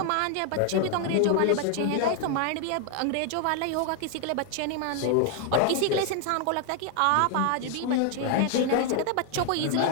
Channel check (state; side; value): different; both; correlation 0.00